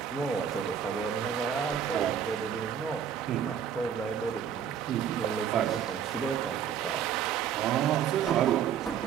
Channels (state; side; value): quieter; left; 8.5 dB